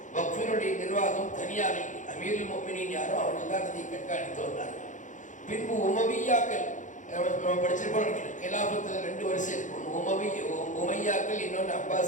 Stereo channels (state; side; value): late; right; 0.36 ms